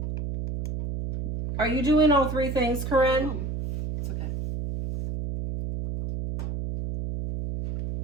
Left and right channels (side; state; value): right; noise; hum, 5 dB below the sound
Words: Are you doing all 3 things, Corinne? It's okay.